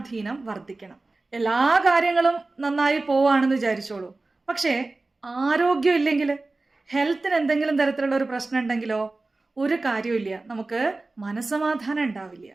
വർദ്ധിക്കണം. എല്ലാ കാര്യങ്ങളും നന്നായി പോവാണെന്ന് വിചാരിച്ചോളൂ, പക്ഷേ ആരോഗ്യം ഇല്ലെങ്കിൽ, ഹെൽത്തിന് എന്തെങ്കിലും തരത്തിലുള്ള ഒരു പ്രശ്നം ഉണ്ടെങ്കിലോ ഒരു കാര്യമില്ല, നമുക്ക് മനസ്സമാധാനം ഉണ്ടാവില്ല.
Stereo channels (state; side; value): quieter; left; 3.3 dB